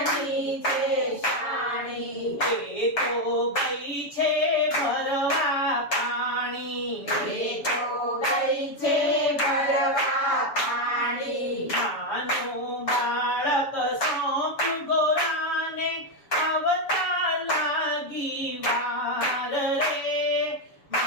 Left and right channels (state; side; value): late; right; 7.0 ms